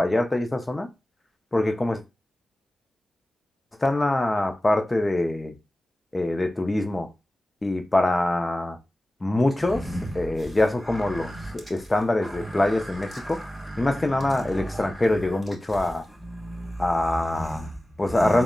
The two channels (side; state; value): both; normal; correlation 0.96